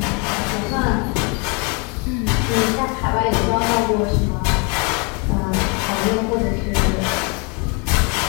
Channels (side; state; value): right; quieter; 32.9 dB